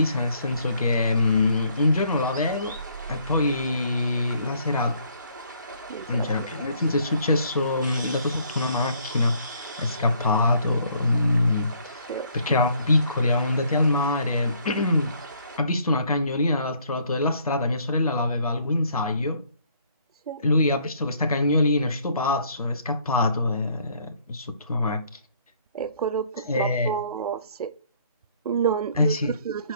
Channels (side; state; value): both; inverted; correlation -0.64